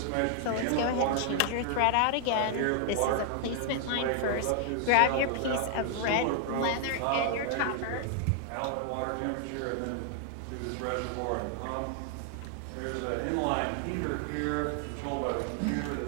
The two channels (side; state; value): both; different; correlation 0.00